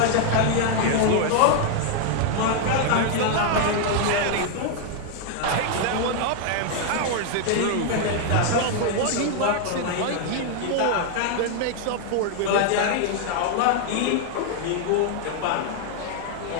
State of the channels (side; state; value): both; different; correlation 0.00